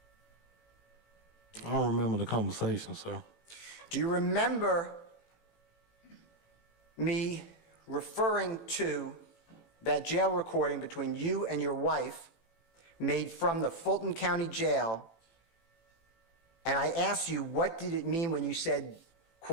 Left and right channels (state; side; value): late; right; 18 ms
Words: I don't remember the conversation, sir. Do you remember me referring to that jail recording between you and your wife made from the Fulton County Jail? And I asked you, what did it mean when you said,